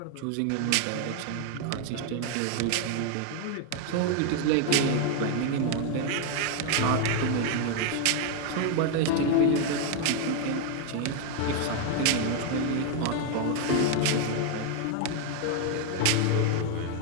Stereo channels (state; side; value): different; both; correlation 0.01